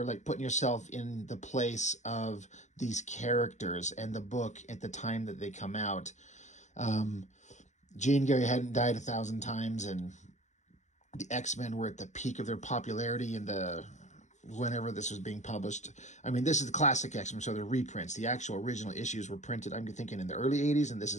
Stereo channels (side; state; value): right; late; 0.34 ms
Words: like, putting yourself in the place of these characters and the book at the time that they come out. Jean Grey hadn't died 1,000 times, and the X-Men were at the peak of their popularity in the whenever this was being published. I mean, this is the classic X-Men, so they're reprints. The actual original issues were printed, I'm thinking, in the early 80s, and this